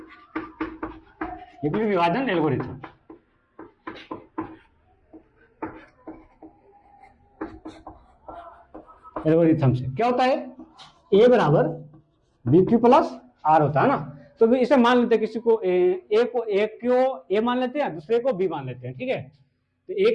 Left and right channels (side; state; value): both; identical; correlation 1.00